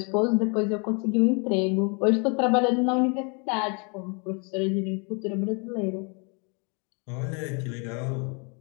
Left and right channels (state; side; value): quieter; right; 34.4 dB